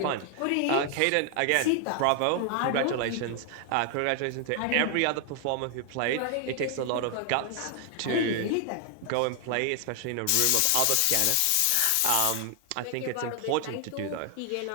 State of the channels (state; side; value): different; both; correlation 0.00